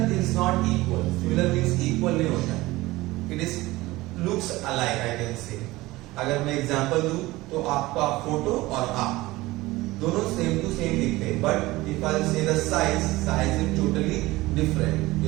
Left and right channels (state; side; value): quieter; left; 19.3 dB